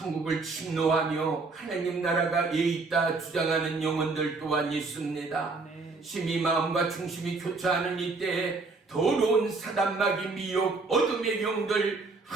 침노하며 하나님 나라가 예 있다 주장하는 영혼들 또한 있습니다. 심히 마음과 중심이 교차하는 이때에 더러운 사단마귀 미혹 어둠의 영들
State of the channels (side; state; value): left; quieter; 3.9 dB